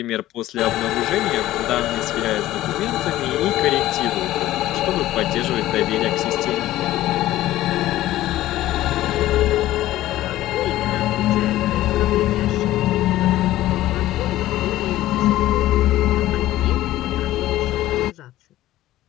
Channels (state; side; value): quieter; right; 15.1 dB